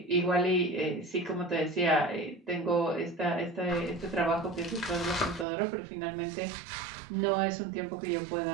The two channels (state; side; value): drops out; left; at 5.5 s